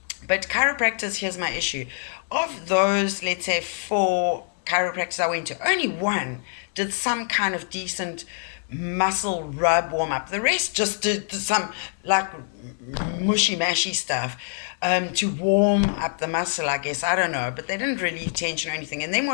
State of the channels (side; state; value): right; silent; 62 dB below the other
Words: But chiropractors, here's my issue. Of those, let's say 4 chiropractors I went to, only one did some kind of decent muscle rub warm up. The rest just did some like mushy mashy stuff to warm up the muscle, I guess. I don't know, but they didn't relieve tension or anything. And then